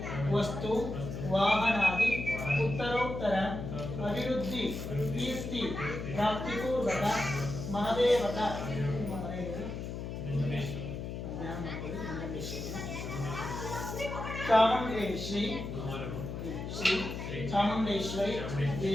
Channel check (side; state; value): left; noise; hum, 6 dB below the sound